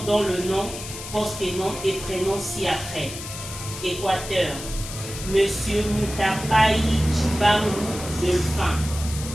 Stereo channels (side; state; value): left; noise; hiss, 10 dB below the sound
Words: dont le nom, post-nom et prénom ci-après. Équateur, Monsieur Mutapai Chibangu Delphin.